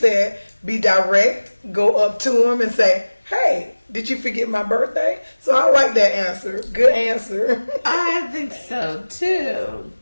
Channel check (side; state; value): both; inverted; correlation -1.00